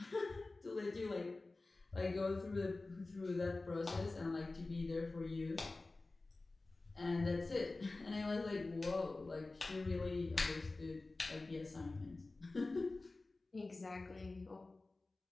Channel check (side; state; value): right; quieter; 3.3 dB